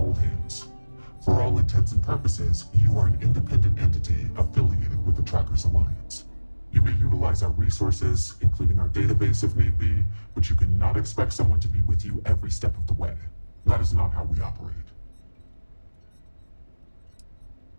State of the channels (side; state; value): both; inverted; correlation -1.00